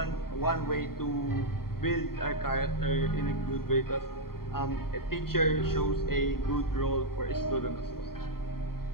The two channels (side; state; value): right; late; 0.93 ms